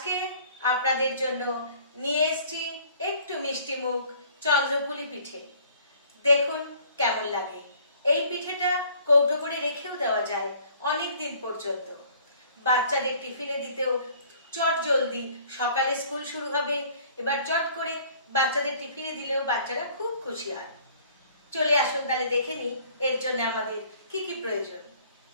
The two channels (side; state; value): both; inverted; correlation -0.55